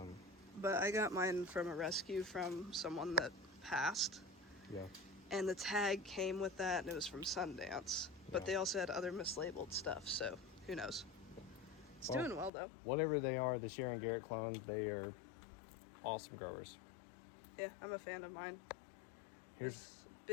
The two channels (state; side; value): drops out; right; at 12.5 s